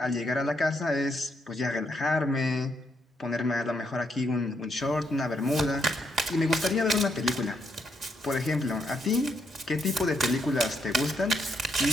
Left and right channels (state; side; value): normal; both; correlation 0.76